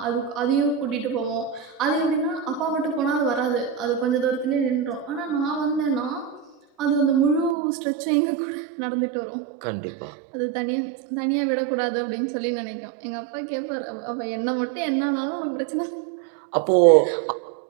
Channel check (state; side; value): drops out; left; at 7.6 s